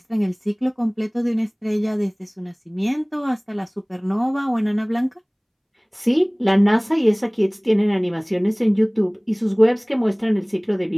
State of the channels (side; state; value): both; identical; correlation 1.00